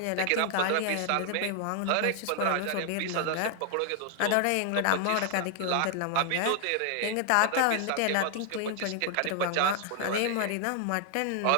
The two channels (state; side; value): different; both; correlation 0.00